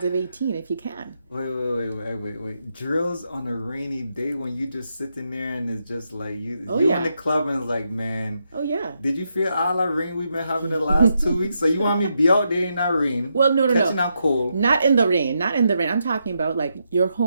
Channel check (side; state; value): both; inverted; correlation -0.82